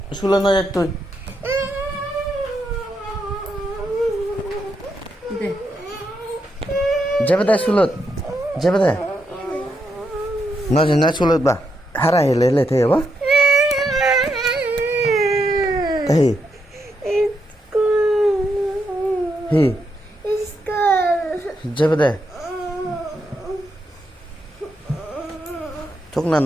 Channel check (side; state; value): both; normal; correlation 0.80